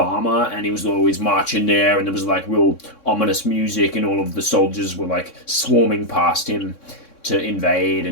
armor, and he was always marching there, and there was like real ominous music, and all of the soldiers were like swarming past him to invade,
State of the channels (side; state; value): right; late; 3.6 ms